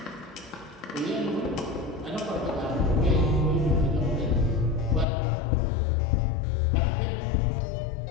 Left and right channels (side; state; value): right; drops out; at 5.1 s